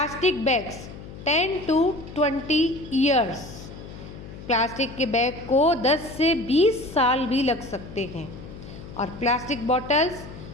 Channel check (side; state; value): left; noise; hum, 14 dB below the sound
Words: bags 10 to 20 years, plastic के बैग को 10 से 20 साल भी लग सकते हैं. और प्लास्टिक बॉटल्स